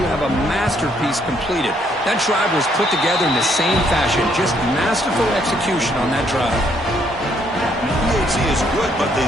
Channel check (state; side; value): normal; both; correlation 0.69